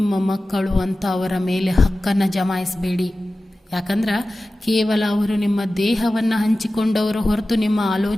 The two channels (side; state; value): both; normal; correlation 0.95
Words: ಮಕ್ಕಳು ಅಂತ ಅವರ ಮೇಲೆ ಹಕ್ಕನ್ನು ಜಮಾಯಿಸಬೇಡಿ. ಯಾಕಂದ್ರೆ ಕೇವಲ ಅವರು ನಿಮ್ಮ ದೇಹವನ್ನು ಹಂಚಿಕೊಂಡವರು ಹೊರತು ನಿಮ್ಮ